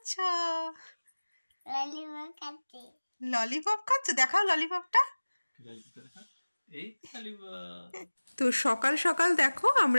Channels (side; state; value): both; inverted; correlation -1.00